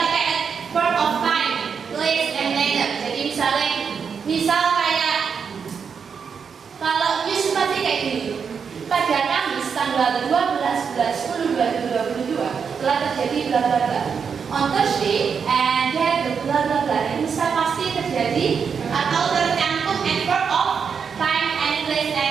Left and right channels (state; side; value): quieter; left; 6.4 dB